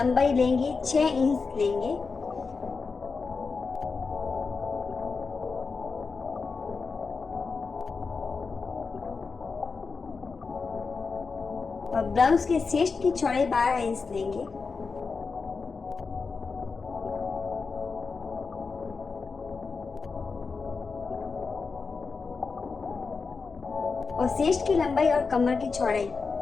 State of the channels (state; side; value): quieter; right; 4.7 dB